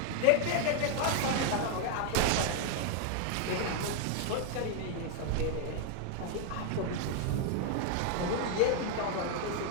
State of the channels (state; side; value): different; both; correlation 0.00